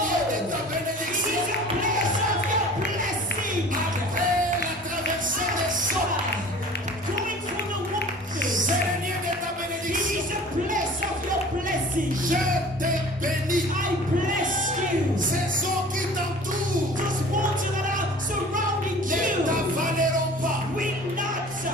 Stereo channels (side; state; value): both; normal; correlation 0.44